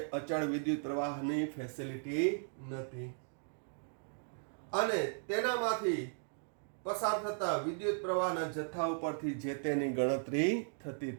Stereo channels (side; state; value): left; silent; digital silence